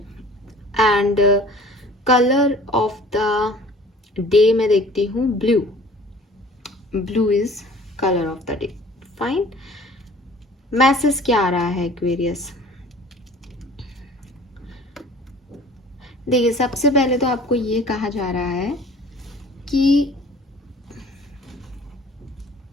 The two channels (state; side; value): normal; both; correlation 0.49